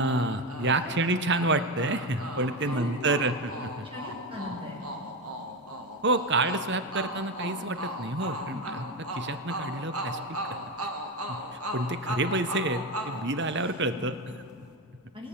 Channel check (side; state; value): both; normal; correlation 0.15